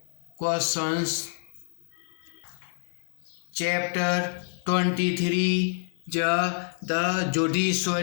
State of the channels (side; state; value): right; silent; digital silence